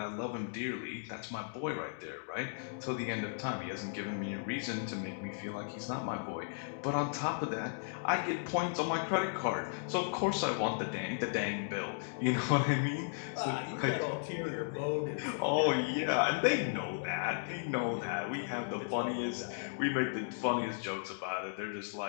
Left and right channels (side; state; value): right; silent; digital silence